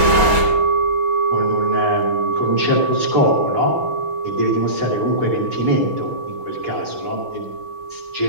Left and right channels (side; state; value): left; late; 6.2 ms